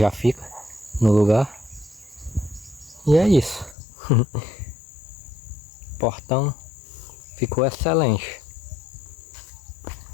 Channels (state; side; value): drops out; right; at 3.8 s